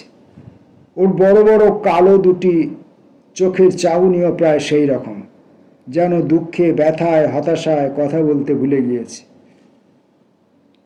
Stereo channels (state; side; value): identical; both; correlation 1.00